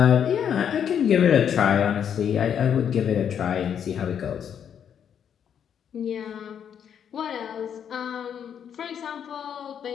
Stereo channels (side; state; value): right; quieter; 8.4 dB